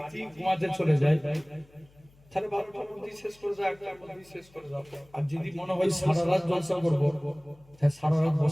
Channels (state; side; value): noise; left; hum, 29 dB below the sound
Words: ঘুমাতে চলে যায় তাহলে 12টার মধ্যে শেষ করে যাও, 1টার মধ্যে শেষ করে যাও। আর যদি মনে হয় সারা রাত জলসা করবো, তাহলে সারা রাত